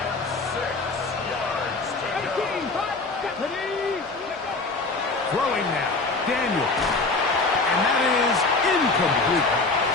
6 yards to go. 18, 5, Throwing now, Daniels. And that is incomplete.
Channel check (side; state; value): right; quieter; 3.6 dB